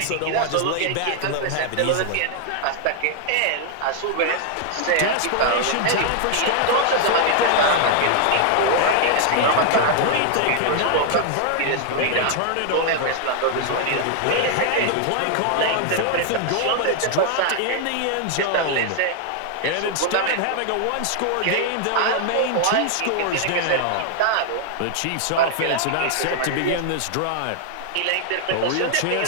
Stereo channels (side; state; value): both; different; correlation 0.00